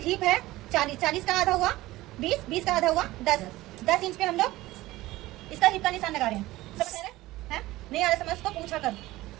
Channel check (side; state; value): left; quieter; 17.8 dB